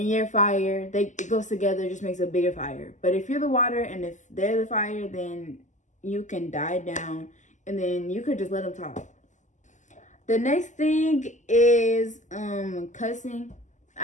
you're fire. It goes together, just makes a bigger fire. But if you're the water and if they're the fire, then you can die down, and then you could just let them talk. The next thing is cussing.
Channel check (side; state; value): right; late; 0.35 ms